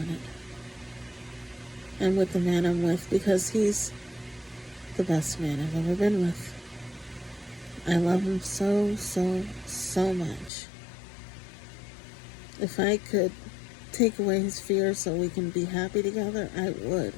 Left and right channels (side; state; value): right; drops out; at 10.5 s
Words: And with the man I'm with, because he's the best man I've ever been with. I love him so, so, so much. If I could take away his fear so we can be happy together, I would.